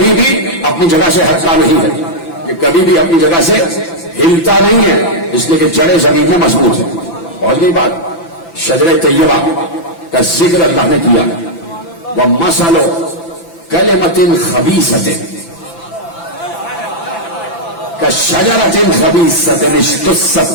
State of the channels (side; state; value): right; late; 5.9 ms